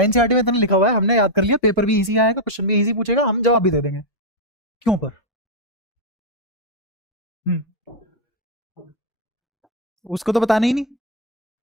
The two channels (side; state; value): both; normal; correlation -0.01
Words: एनसीईआरटी में इतना लिखा हुआ है, हमने याद कर लिया, पेपर भी इजी आएगा, क्वेश्चन भी इजी पूछेगा, हम जवाब भी दे देंगे। क्यों पर हम्म, उसको तो बताना ही नहीं।